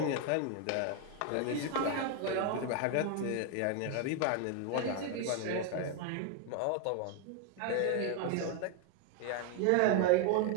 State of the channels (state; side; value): different; both; correlation 0.01